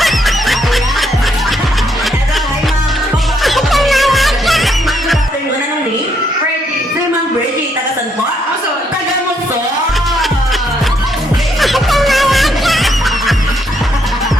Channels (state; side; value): normal; both; correlation 0.73